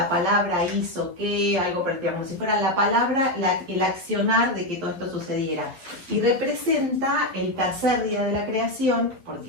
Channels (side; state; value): left; late; 11 ms